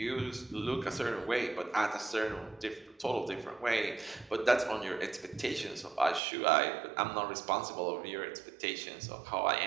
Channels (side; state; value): left; drops out; at 6.2 s